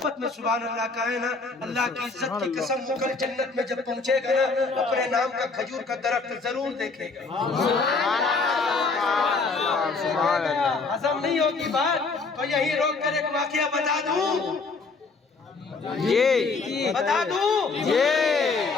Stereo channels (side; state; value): right; quieter; 4.2 dB